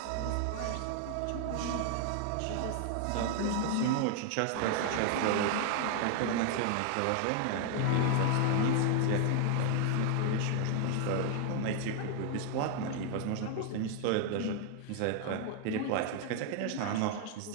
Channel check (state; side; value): different; both; correlation 0.00